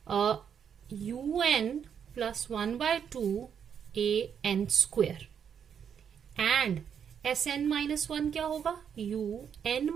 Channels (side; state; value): left; quieter; 7.8 dB